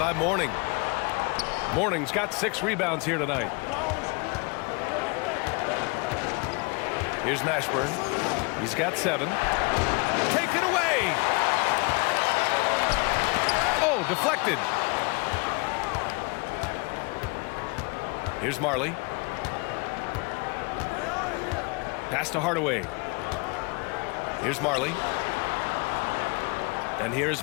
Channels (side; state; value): right; quieter; 30.2 dB